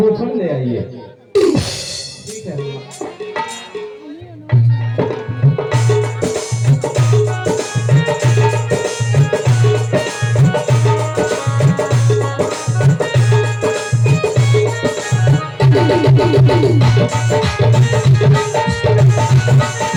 ले आइए। ठीक है हनुमान।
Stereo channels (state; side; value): identical; both; correlation 1.00